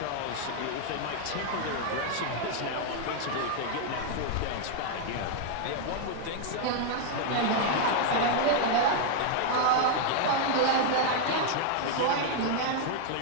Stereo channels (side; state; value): both; different; correlation 0.00